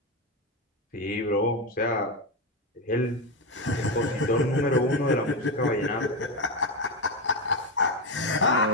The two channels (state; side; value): normal; both; correlation 0.12